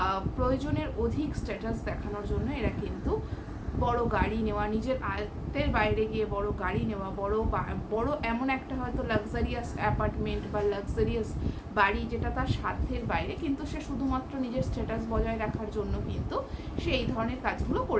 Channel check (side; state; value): both; identical; correlation 1.00